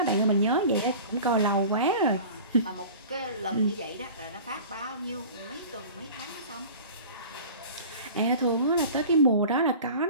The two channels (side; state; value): both; inverted; correlation -0.40